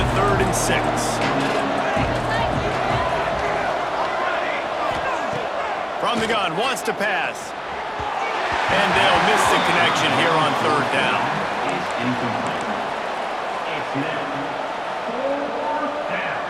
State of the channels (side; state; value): both; identical; correlation 1.00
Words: 3rd and 6. From the gun, wants to pass. And they'll miss the connection here on 3rd down.